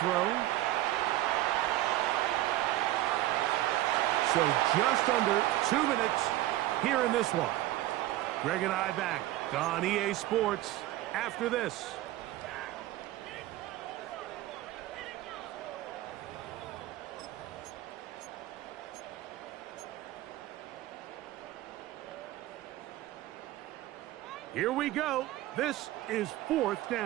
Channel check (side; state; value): left; quieter; 15.7 dB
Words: So just under 2 minutes here in this one. Greg and I back on EA Sports after this. Here we go. This is 4th